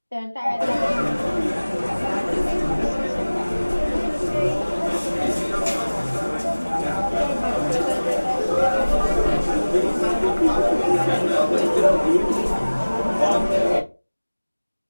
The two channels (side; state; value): both; inverted; correlation -1.00